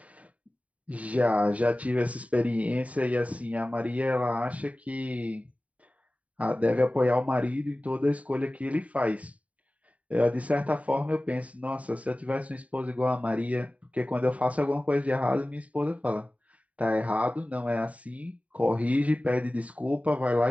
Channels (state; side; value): late; left; 0.068 ms